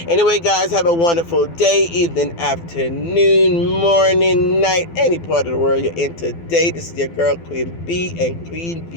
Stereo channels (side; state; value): right; late; 12 ms